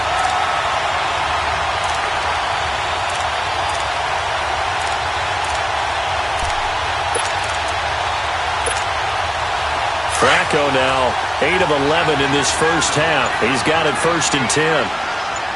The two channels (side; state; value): both; identical; correlation 1.00